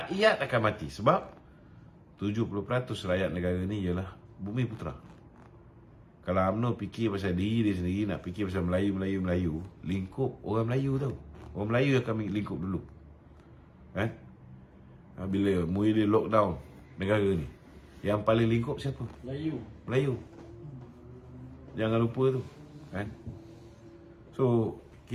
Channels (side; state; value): both; identical; correlation 1.00